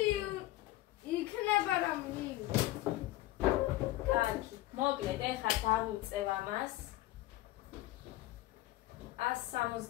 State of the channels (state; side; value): quieter; right; 16.9 dB